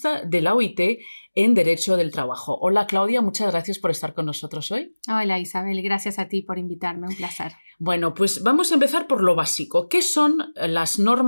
de la OIT en Derecho del Trabajo. Hola Claudia, muchas gracias por estar con nosotros hoy. Hola Isabel, gracias a ti por invitarme, un placer. Bueno, pues vamos a empezar por lo básico. ¿Qué son las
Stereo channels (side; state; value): both; inverted; correlation -1.00